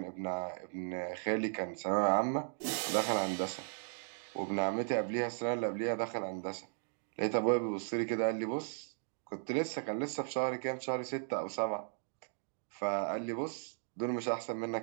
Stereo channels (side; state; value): left; silent; digital silence